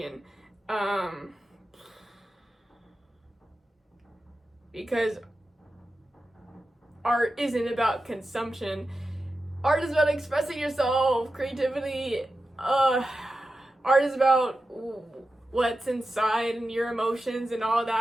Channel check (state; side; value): normal; both; correlation 0.92